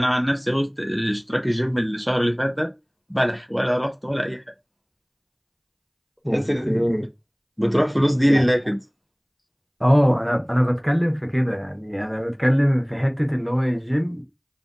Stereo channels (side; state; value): both; identical; correlation 1.00